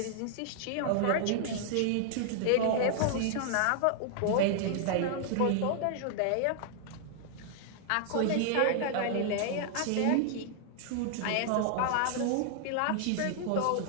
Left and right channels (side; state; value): both; different; correlation 0.00